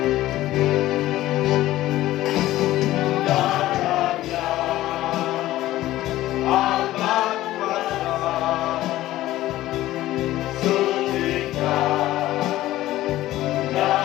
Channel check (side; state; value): right; quieter; 15.4 dB